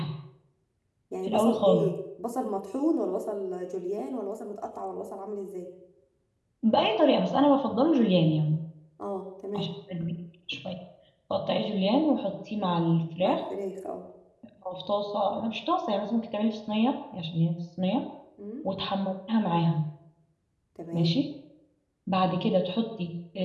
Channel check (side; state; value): both; identical; correlation 1.00